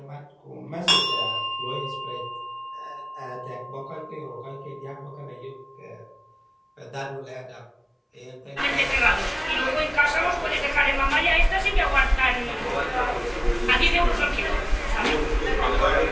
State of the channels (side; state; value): both; identical; correlation 1.00